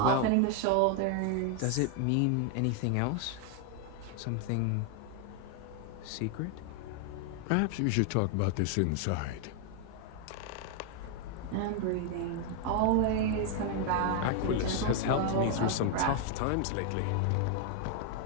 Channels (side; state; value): both; different; correlation 0.00